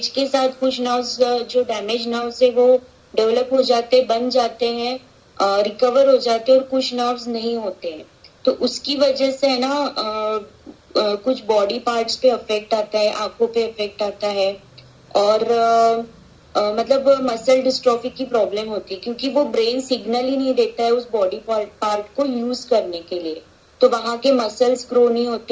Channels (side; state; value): both; identical; correlation 1.00